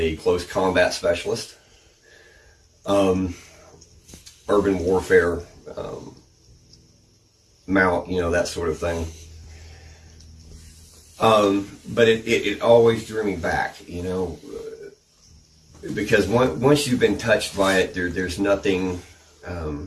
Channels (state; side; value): identical; both; correlation 1.00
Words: close combat specialist, urban warfare, mount, that sort of thing. But it always drew me back, because once you've been touched by it, there's nothing